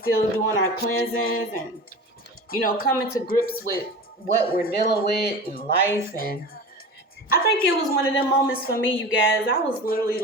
doing our cleansings and, coming to grips with what we're dealing with in life. And I think it was one of them moments for me, you guys. I was literally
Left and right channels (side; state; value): both; normal; correlation 0.33